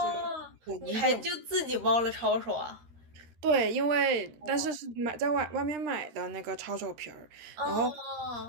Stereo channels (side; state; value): left; late; 13 ms